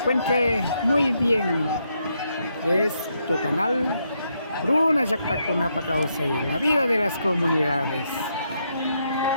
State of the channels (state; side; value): inverted; both; correlation -0.78